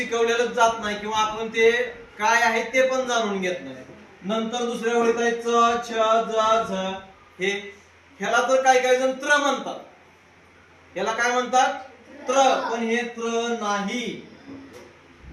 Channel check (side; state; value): both; identical; correlation 1.00